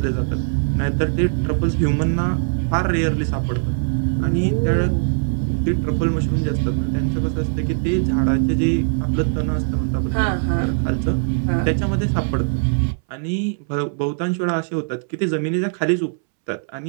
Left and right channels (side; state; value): left; silent; 65 dB below the other